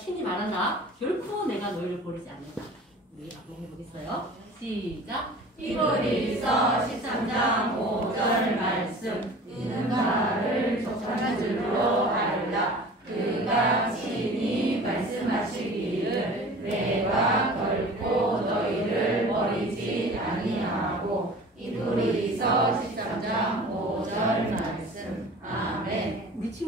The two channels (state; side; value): normal; both; correlation 0.42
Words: 말한다. 결코 내가 너희를 버리지 않는다. 우리 한번 해보겠어요. 시작! 히브리서 13장 5절 말씀 있는 바를 족한 줄로 알라. 그가 친히 말씀하시기를 내가 결코 너희를 버리지 아니하고. 히브리서 13장 5절 말씀. 아멘. 우리